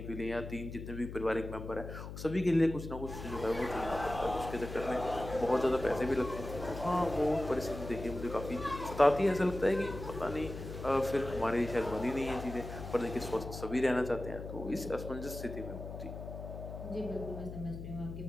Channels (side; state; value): left; noise; hum, 9 dB below the sound